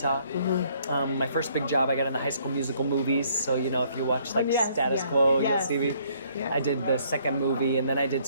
My first big job, I got in the High School Musical movies. So, if you watch like Status Quo, you'll see me. Yeah. I did the second movie, and then I did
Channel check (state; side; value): inverted; both; correlation -0.64